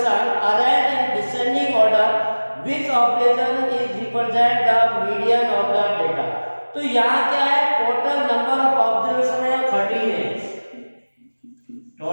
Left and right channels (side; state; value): both; inverted; correlation -1.00